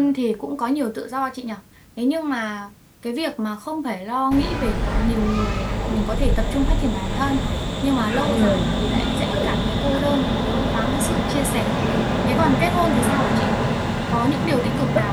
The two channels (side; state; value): both; identical; correlation 1.00